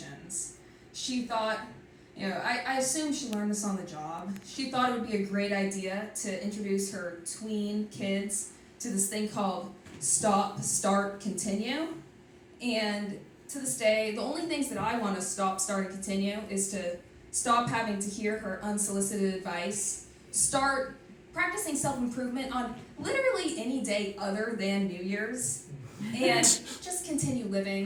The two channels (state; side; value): identical; both; correlation 1.00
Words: She thought, I assume she learned this on the job. She thought it would be a great idea to introduce her tween kids to this thing called Stop, Start, Continue. And to this day, the only things that I want to stop, start, and continue is to stop having to hear her unsolicited advice, start practicing self-improvement on literally any day other than New Year's, and just continue